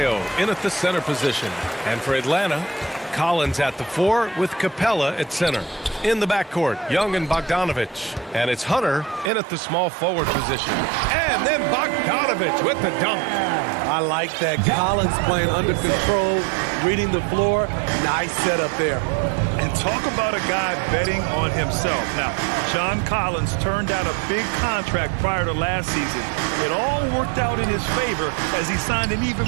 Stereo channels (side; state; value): left; drops out; at 9.3 s